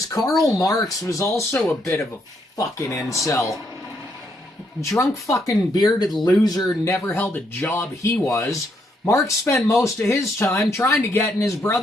Karl Marx was also a bit of a fucking incel. Drunk fucking bearded loser, never held a job he was. Marx spent most of his time trying to get in his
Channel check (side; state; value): both; normal; correlation 0.75